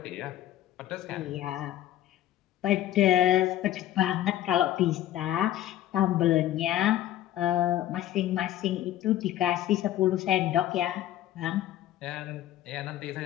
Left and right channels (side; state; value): right; quieter; 13.0 dB